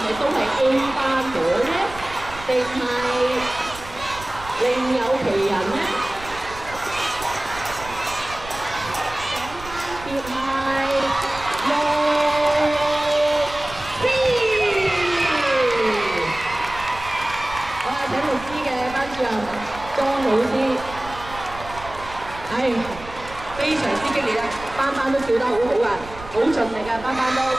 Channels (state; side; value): noise; right; rumble, 15 dB below the sound